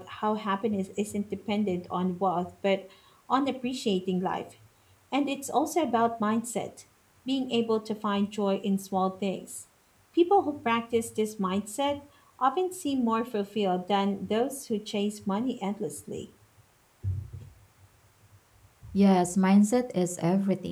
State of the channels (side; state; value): both; identical; correlation 1.00